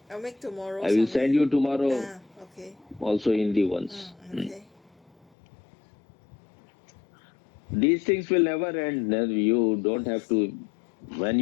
I'll make tomorrow, I will Swami. send you tomorrow Okay. also Hindi ones. Okay. These things will never end. You don't have to. When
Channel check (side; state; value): right; drops out; at 5.2 s